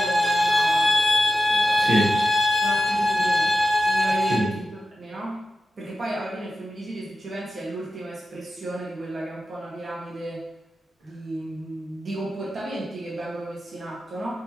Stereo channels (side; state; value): both; normal; correlation 0.91